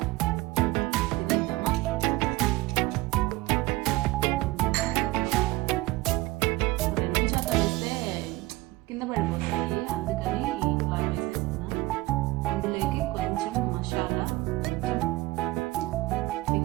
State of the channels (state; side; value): quieter; left; 19.4 dB